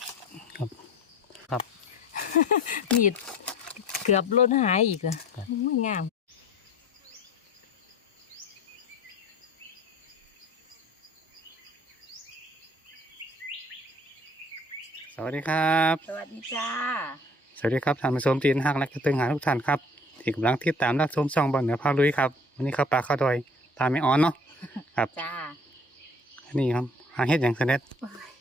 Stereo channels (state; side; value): normal; both; correlation 0.49